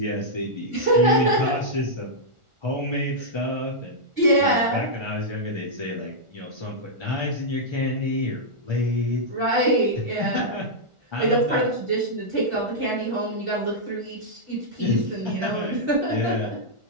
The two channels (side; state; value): left; late; 1.4 ms